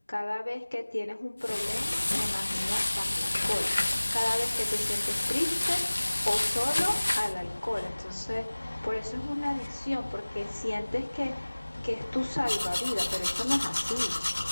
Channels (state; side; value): inverted; both; correlation -1.00